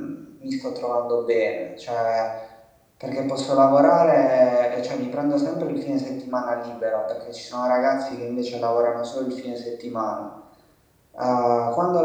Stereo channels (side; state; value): both; identical; correlation 1.00